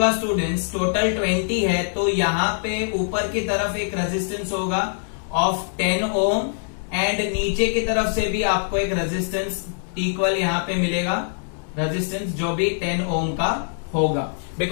स्टूडेंट्स टोटल 20 है, तो यहाँ पे ऊपर की तरफ एक रेजिस्टेंस होगा ऑफ 10 ओम, एंड नीचे की तरफ से भी आपको एक रेजिस्टेंस इक्वल यहाँ पे मिलेगा, रेजिस्टेंस जो भी 10 ओम का होगा,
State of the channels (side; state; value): right; silent; digital silence